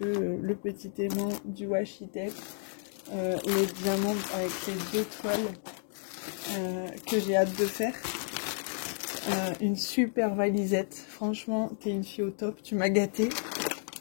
le petit aimant du washi tape, les diamants avec les 2 toiles que j'ai hâte de faire. Une super valisette. Franchement, t'es une fille au top. Tu m'as gâtée.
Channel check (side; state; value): right; silent; 57 dB below the other